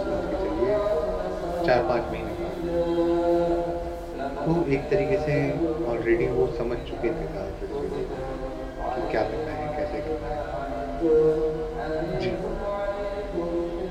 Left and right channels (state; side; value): identical; both; correlation 1.00